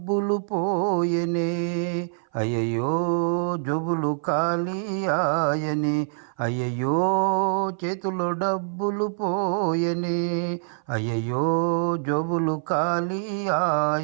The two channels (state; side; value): silent; left; 58 dB below the other